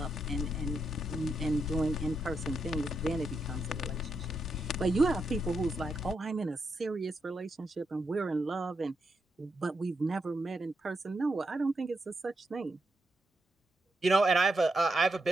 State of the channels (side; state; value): both; normal; correlation 0.82